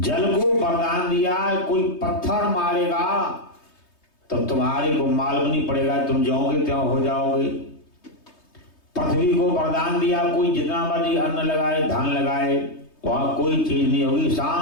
को वरदान दिया, कोई पत्थर मारेगा तो तुम्हारे को मालूम नहीं पड़ेगा, तुम जाओगे त्यों हो जाओगे। पृथ्वी को वरदान दिया, कोई जितना मर्जी अन्न लगाए, धान लगाए, वहां कोई चीज नहीं होगी,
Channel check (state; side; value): late; right; 3.2 ms